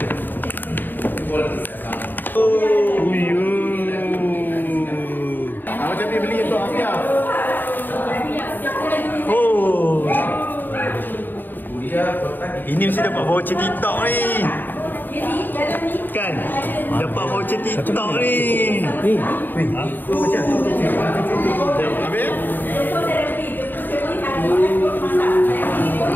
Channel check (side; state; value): right; late; 0.091 ms